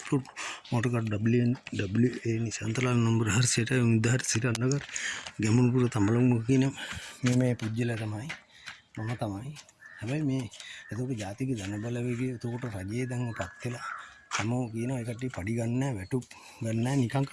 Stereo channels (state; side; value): identical; both; correlation 1.00